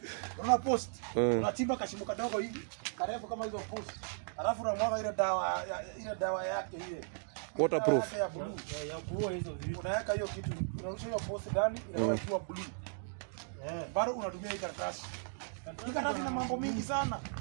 Unaona post? Unachimba kashimo kadogo hivi, karefu kama hizo post. Alafu unamwaga ile dawa yake ile. Waterproof. Ya blue hizo vitu. Unaweka hiyo kitu, unarusha hiyo post ndani inakuwa blue. Bado unatumia hii karatasi. Hii karatasi ina mambo mingi sana.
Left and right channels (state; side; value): silent; left; digital silence